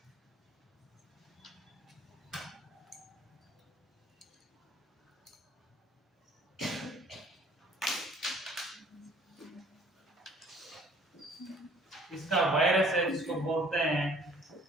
इसका वायरस है जिसको बोलते हैं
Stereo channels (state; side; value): normal; both; correlation 0.55